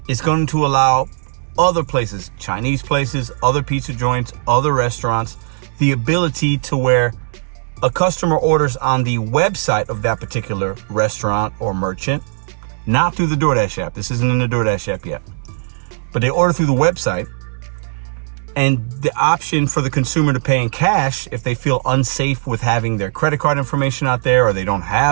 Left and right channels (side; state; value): left; silent; digital silence